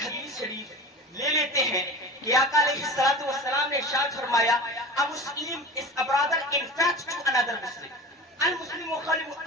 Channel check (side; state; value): both; normal; correlation 0.34